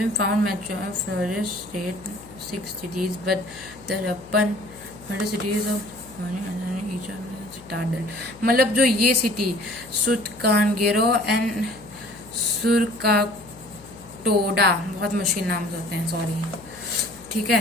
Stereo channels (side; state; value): left; noise; hum, 21 dB below the sound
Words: found mature flourish state 6 cities, but the Harappan cities of citadel, मतलब जो ये सिटी सुतकानगेरो एंड सुरकाटोडा, बहुत मुश्किल नाम होते हैं, सॉरी, ठीक